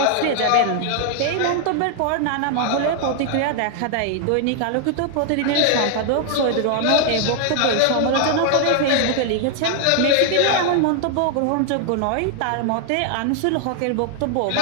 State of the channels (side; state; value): both; different; correlation 0.00